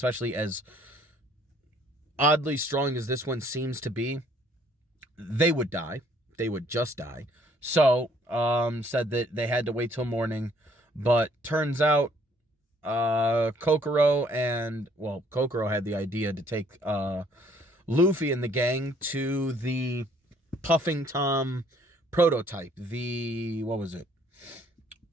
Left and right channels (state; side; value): normal; both; correlation 0.62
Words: as oddly strong as this one seems to be, they would die. They would just die. So, said that they had to wait till morning, but turns out Kokoro had the idea to take Luffy and the gang to the Puffing Tom prototype.